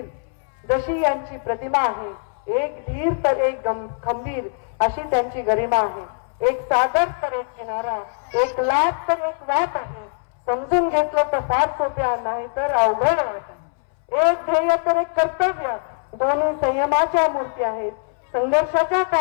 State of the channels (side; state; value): right; silent; 64 dB below the other